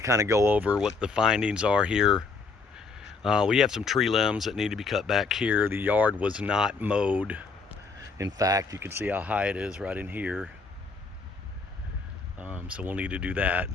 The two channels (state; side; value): quieter; right; 4.4 dB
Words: kind of go over what the findings are here. We have some tree limbs that need to be cut back here. The yard was not mowed. In fact, you can see how high it is right in here. So we'll need to do that.